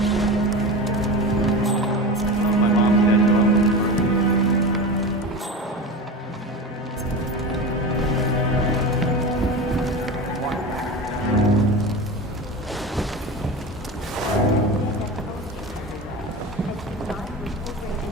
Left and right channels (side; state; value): both; normal; correlation 0.27